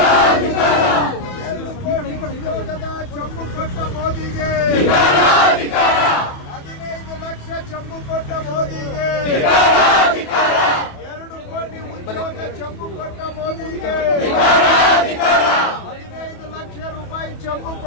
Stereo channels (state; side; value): late; right; 28 ms